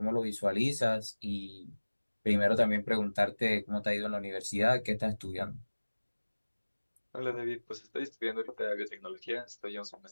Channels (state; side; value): inverted; both; correlation -1.00